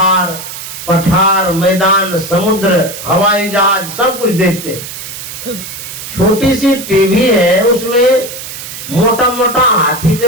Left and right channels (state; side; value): noise; right; hiss, 10 dB below the sound